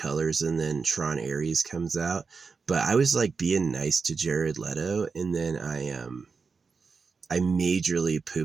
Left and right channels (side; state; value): left; quieter; 5.0 dB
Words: and then Tron Ares comes out. But I was like being nice to Jared Leto, and then I majorly